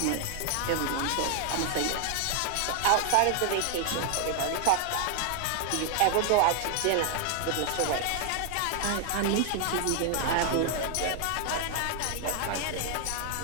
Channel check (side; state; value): both; different; correlation 0.00